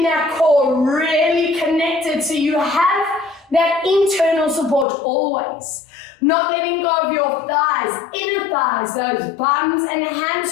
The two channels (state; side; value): drops out; right; at 4.9 s